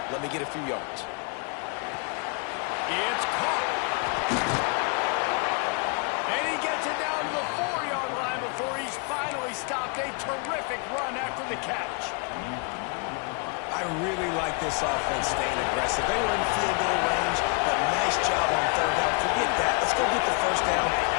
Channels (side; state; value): right; quieter; 34.9 dB